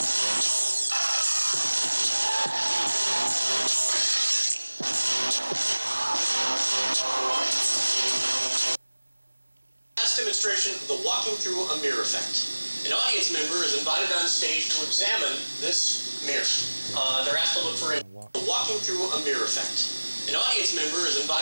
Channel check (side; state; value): both; inverted; correlation -1.00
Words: Demonstration of the walking through a mirror effect. An audience member is invited on stage to examine this mirror. They're asked to look for a walking through a mirror effect. An audience member is